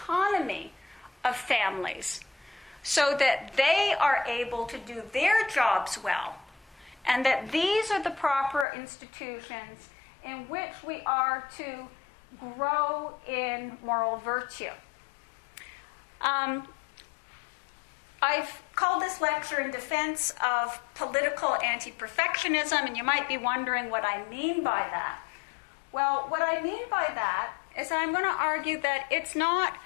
of families, so that they are able to do their jobs well, and that these are the proper institutions in which we are to grow in moral virtue. I've called this lecture in defense of political anti-perfectionism, and you might be wondering what I mean by that. Well, what I mean by that is that I'm going to argue that it's not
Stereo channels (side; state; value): right; drops out; at 8.7 s